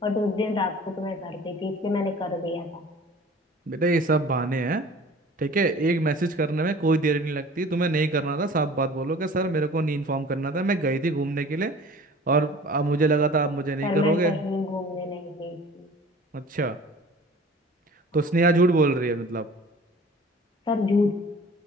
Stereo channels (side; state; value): both; normal; correlation 0.45